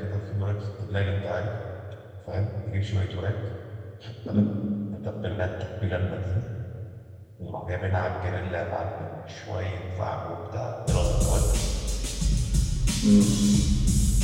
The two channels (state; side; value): identical; both; correlation 1.00